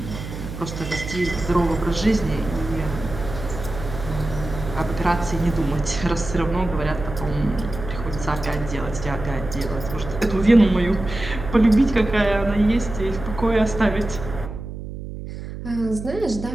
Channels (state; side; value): noise; right; hum, 9 dB below the sound